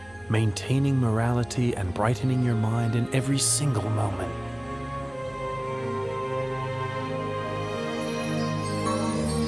maintaining morality, and brightening your mind in every single moment.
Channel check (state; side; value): noise; left; hum, 25 dB below the sound